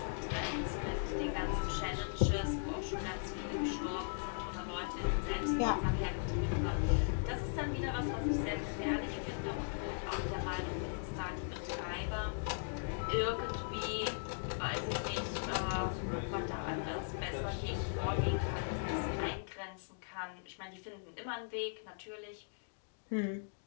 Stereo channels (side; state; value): right; silent; digital silence